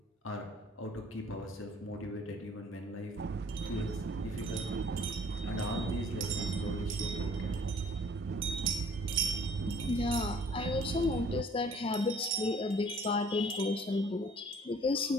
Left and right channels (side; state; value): both; normal; correlation 0.55